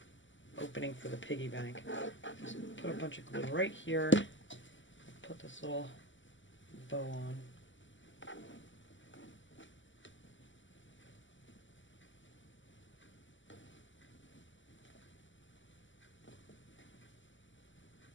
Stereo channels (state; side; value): late; right; 0.55 ms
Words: opening for the piggy bank. Just put a bunch of glue right here. Put this little bow on.